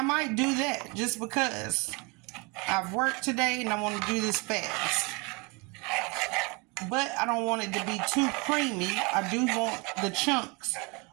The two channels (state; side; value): quieter; left; 28.8 dB